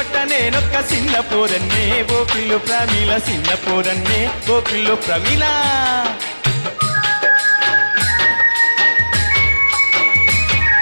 నేనొక్క చిన్న పోరన్నే ఓ పిల్లు ప్రమిళ చిన్న పోరన్నే ఓ పిల్లు ప్రమిళ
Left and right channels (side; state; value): both; inverted; correlation -1.00